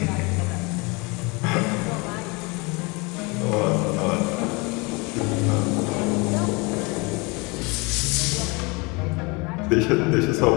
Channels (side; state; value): right; quieter; 27.7 dB